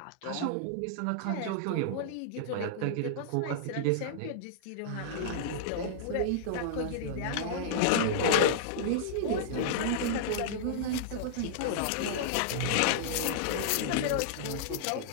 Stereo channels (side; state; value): both; different; correlation -0.02